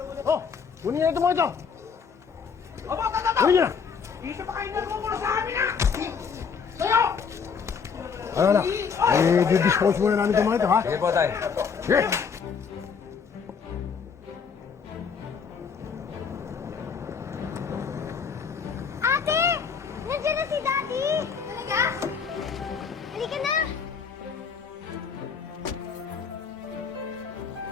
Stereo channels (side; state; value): right; quieter; 6.1 dB